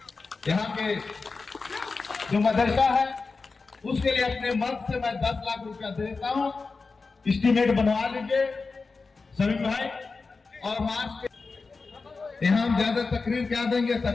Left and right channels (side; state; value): right; quieter; 4.2 dB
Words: यहाँ के जो मदरसा है उसके लिए अपने मर्द से मैं 10 लाख रुपया देता हूँ। एस्टीमेट बनवा लीजिए सभी भाई। और मार्च के यहाँ हम ज्यादा तकरीर क्या देंगे,